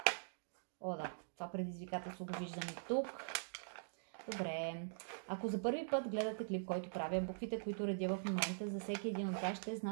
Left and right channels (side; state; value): left; silent; digital silence